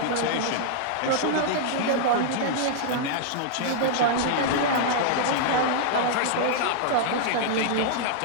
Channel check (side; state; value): both; different; correlation -0.01